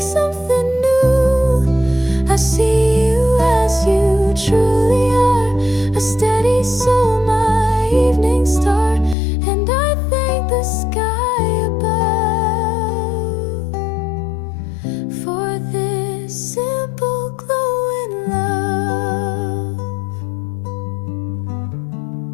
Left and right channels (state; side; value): drops out; right; at 9.2 s